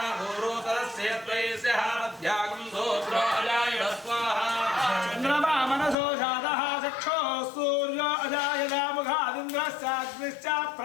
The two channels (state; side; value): drops out; right; at 6.0 s